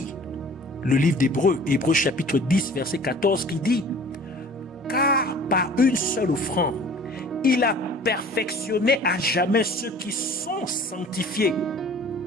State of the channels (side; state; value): both; normal; correlation 0.47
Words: le livre d'Hébreux, Hébreux chapitre 10, verset 14, qui dit: car par une seule offrande, il a perfectionné à jamais ceux qui sont sanctifiés.